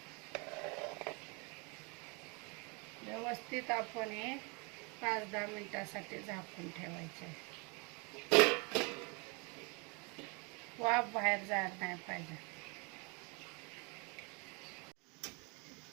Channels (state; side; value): quieter; left; 31.4 dB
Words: व्यवस्थित आपण हे 5-10 मिनिटासाठी झाकून ठेवायचे। वाफ बाहेर जायला नाही पाहिजे।